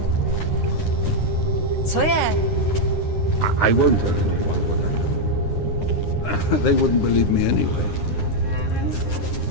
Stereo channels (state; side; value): late; right; 9.8 ms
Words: Co je? I won't tell anyone what I know. They wouldn't believe me anyway.